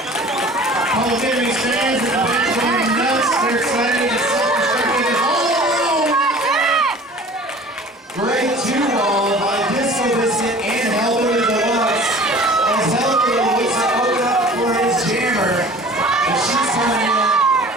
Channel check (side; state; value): both; normal; correlation 0.45